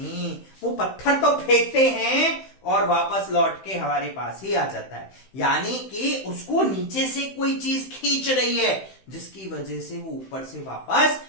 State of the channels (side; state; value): right; late; 15 ms